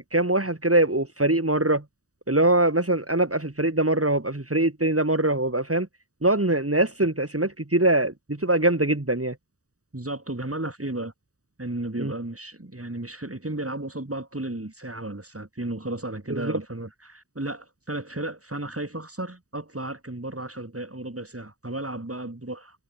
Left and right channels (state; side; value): late; left; 0.66 ms